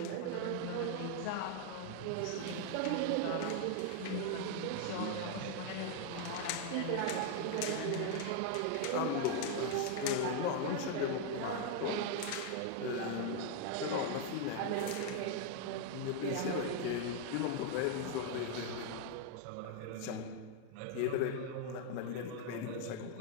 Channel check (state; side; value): different; both; correlation 0.00